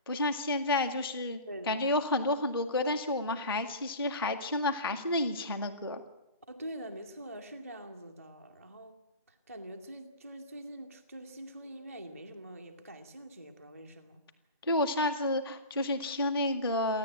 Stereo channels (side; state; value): both; inverted; correlation -0.33